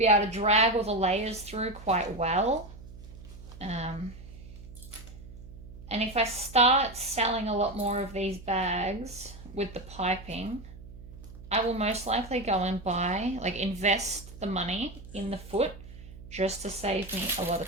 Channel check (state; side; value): noise; right; hum, 16 dB below the sound